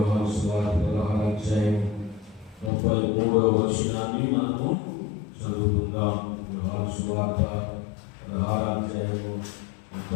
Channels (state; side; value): drops out; right; at 2.7 s